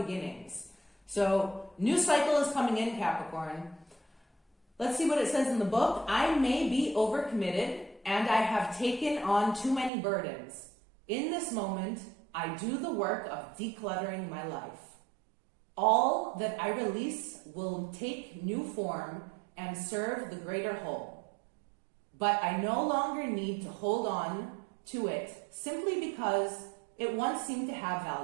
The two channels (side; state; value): left; drops out; at 9.9 s